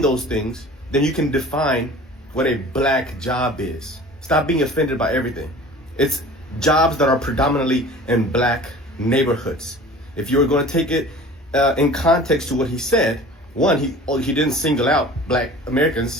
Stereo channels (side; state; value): both; normal; correlation 0.42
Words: things, then you can define what a black job is. Stop being offended by everything. It's jobs that are predominantly in black neighborhoods. If you were going to take it in context to what he said, one, he didn't single out black